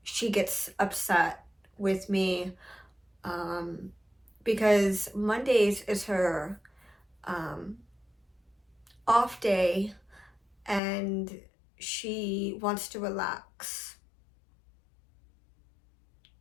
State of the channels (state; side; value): drops out; right; at 10.8 s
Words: she gets upset with me, because Mondays is her off day and she wants to relax.